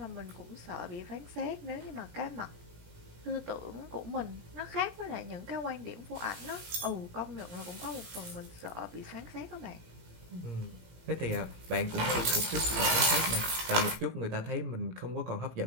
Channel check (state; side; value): late; left; 17 ms